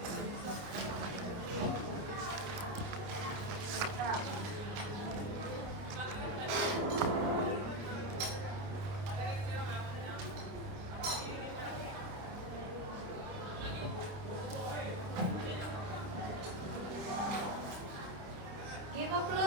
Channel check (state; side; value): late; left; 29 ms